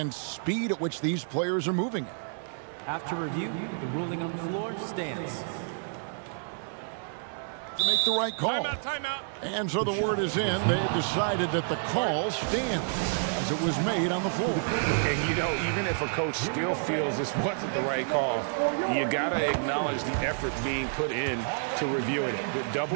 speed at which these players are moving at. After review, the ruling on the floor stands. To make the right call. Timeout. And so the word is in. They've decided that the call stands as it was made on the floor. And, you know, even if a coach still feels this wasn't the right call, you got to acknowledge the effort being put in to reviewing it. The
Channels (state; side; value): silent; left; 58 dB below the other